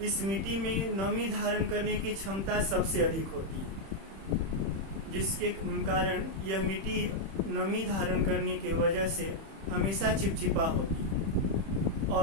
इस मिट्टी में नमी धारण करने की क्षमता सबसे अधिक होती है। जिसके कारण यह मिट्टी नमी धारण करने की वजह से हमेशा चिपचिपा होती है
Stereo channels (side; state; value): left; late; 31 ms